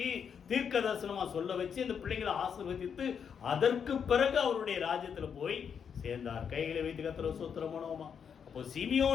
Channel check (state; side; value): quieter; right; 7.2 dB